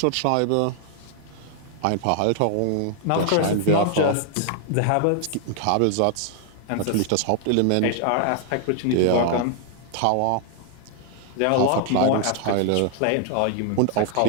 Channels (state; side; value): different; both; correlation 0.00